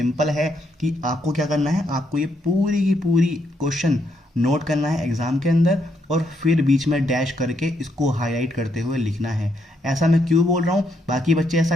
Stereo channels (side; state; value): both; normal; correlation 0.76